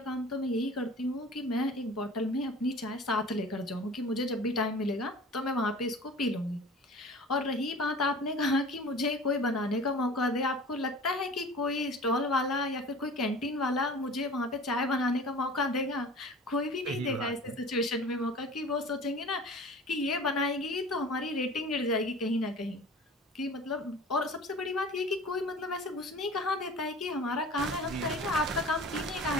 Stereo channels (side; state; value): both; normal; correlation 0.41